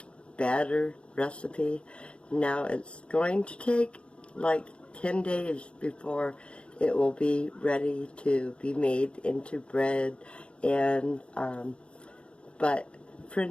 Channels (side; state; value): right; late; 0.058 ms